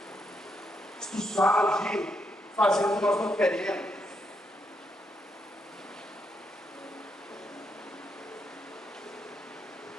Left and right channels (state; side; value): normal; both; correlation 0.79